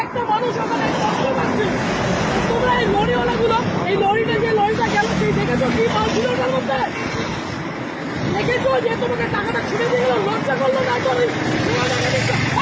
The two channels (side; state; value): both; identical; correlation 1.00